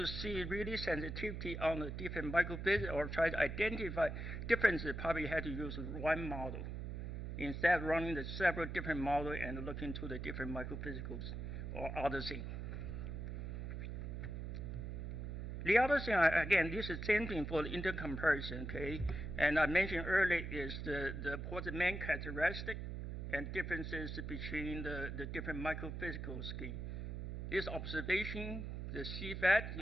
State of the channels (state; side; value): noise; right; hum, 5 dB below the sound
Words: see really sensitivity on the different microphysics or try to identify differences, probably had to use one model instead of running the several different models and looking to the different microphysicals or other things. The other thing, again, this is the same thing for the intercomparison, okay? And I mentioned earlier is what's the main characteristic and differences between the different microphysical scheme. This observation, the CFAT,